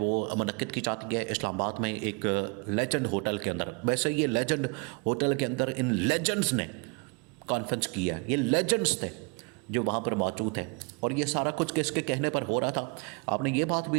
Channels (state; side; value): quieter; left; 32.4 dB